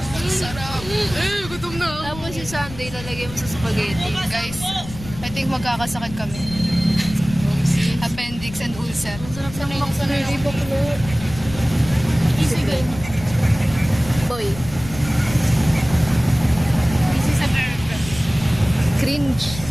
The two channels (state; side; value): noise; left; rumble, 13 dB below the sound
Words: Sarap. Gutom na ako. Tapos yung Sunday, lalagay mo sa spaghetti. Guys, I think magkakasakit kami. Appendix and ulcer. Sarap ng macaroni baklo. Easy girl. Boy. Easy sa girl. Cringe.